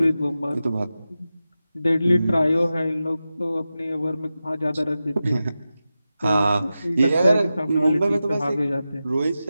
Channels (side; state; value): both; inverted; correlation -0.93